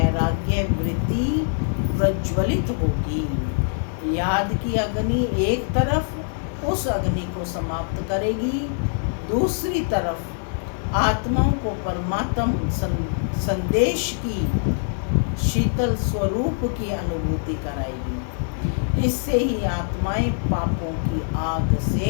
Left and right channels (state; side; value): silent; right; digital silence